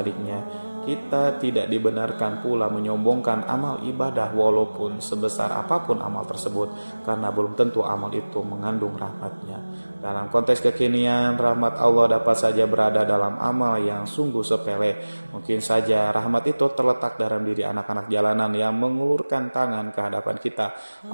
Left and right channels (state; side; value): inverted; both; correlation -1.00